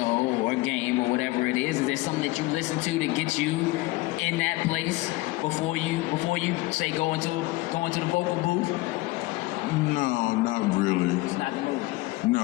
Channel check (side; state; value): right; quieter; 20.5 dB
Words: or a game or whatever it is there something that you listen to get you in that place before you say go into the vocal booth? No, not really. It's not the movie.